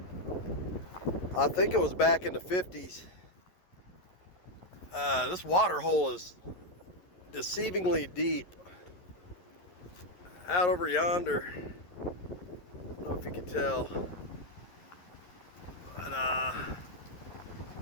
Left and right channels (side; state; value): right; late; 11 ms